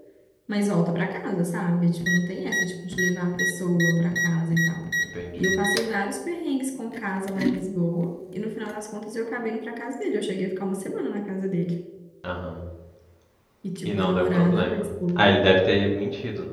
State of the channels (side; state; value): both; identical; correlation 1.00